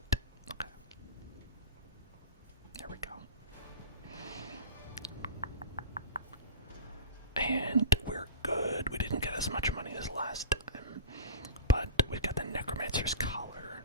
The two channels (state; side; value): inverted; both; correlation -0.31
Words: Okay. There we go. And we're good. We didn't get as much money as last time, but we've got the Necromancer's Collar,